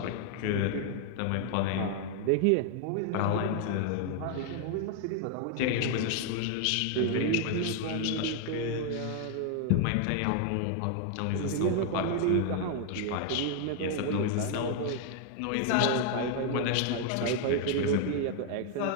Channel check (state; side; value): different; both; correlation 0.00